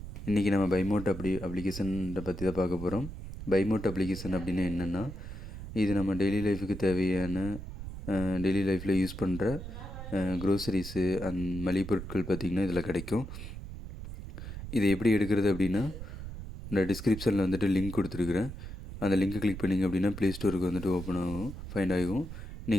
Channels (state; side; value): noise; right; rumble, 10 dB below the sound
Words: இன்றைக்கி நம்ம பைமோட் அப்ளிகேஷனை பற்றி தான் பார்க்க போகிறோம். பைமோட் அப்ளிகேஷன் அப்படின்னா என்னென்னா, இது நம்ம டெய்லி லைஃபுக்கு தேவையான டெய்லி லைஃப்பில் யூஸ் பண்ணுற க்ரோசரிஸு அண்ட் மளிகை பொருட்கள் பார்த்திங்கன்னா இதில் கிடைக்கும். இதை எப்படி எடுக்கிறது அப்படின்னா, இந்த டிஸ்கிரிப்ஷனில் வந்துட்டு லிங்க் கொடுத்துருக்குறேன். அந்த லிங்க்கை கிளிக் பண்ணிங்க அப்படின்னா ப்ளே ஸ்டோருக்கு வந்துட்டு ஓப்பன் ஆகும், ஃபைண்ட் ஆகும்.